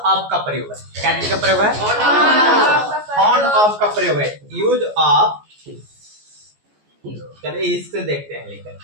का प्रयोग है। क्या चीज का प्रयोग है? फाउंड ऑफ का प्रयोग है। यूज ऑफ, चलिए इससे देखते हैं लेकर।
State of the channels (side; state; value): left; late; 14 ms